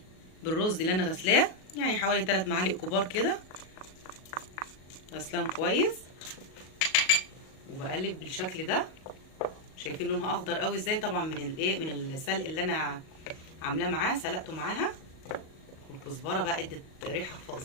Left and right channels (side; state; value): right; late; 37 ms